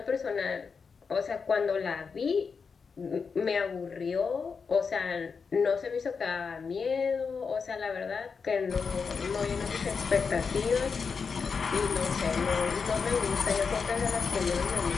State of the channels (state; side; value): quieter; right; 5.4 dB